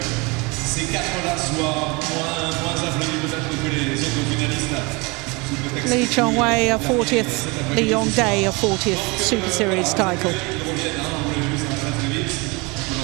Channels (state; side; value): quieter; left; 27.1 dB